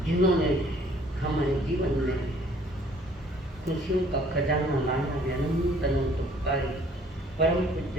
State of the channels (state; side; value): normal; both; correlation 0.58